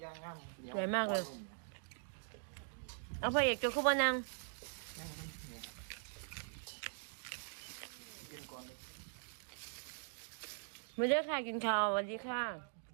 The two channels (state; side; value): silent; left; digital silence